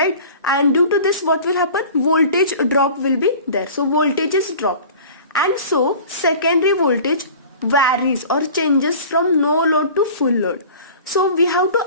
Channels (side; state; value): both; inverted; correlation -0.42